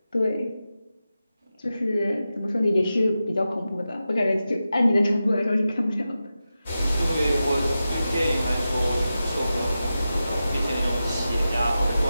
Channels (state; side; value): inverted; both; correlation -0.91